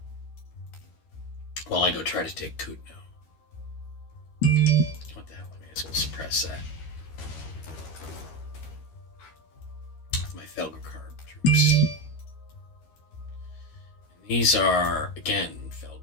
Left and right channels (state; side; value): late; right; 13 ms